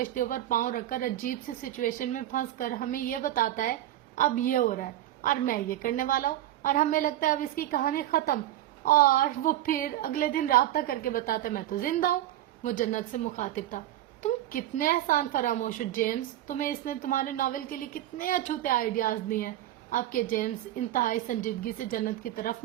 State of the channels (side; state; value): left; quieter; 13.5 dB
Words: پر پاؤں رکھ کر عجیب سی سچویشن میں پھنس کر ہمیں یہ بتاتا ہے اب یہ ہو رہا ہے اور میں یہ کرنے والا ہوں, اور ہمیں لگتا ہے اب اس کی کہانی ختم, اور وہ پھر اگلے دن رابطہ کر کے بتاتا ہے میں تو زندہ ہوں. وہ جنت سے مخاطب تھا. تم کتنے احسان فراموش ہو جیمز. تمہیں اس نے تمہارے ناول کے لیے کتنے اچھوتے آئیڈیاز دیے ہیں. اب کے جیمز انتہائی سنجیدگی سے جنت کی طرف